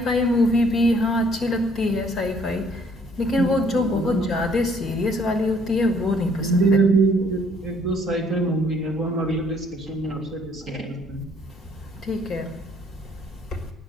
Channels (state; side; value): normal; both; correlation 0.63